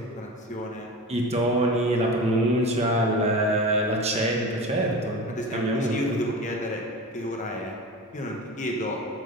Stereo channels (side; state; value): both; normal; correlation 0.31